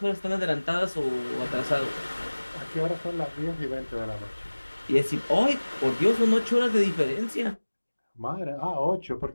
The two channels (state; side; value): inverted; both; correlation -1.00